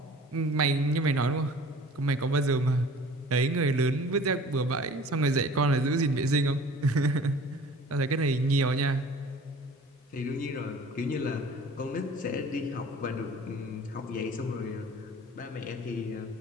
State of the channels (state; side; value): normal; both; correlation 0.46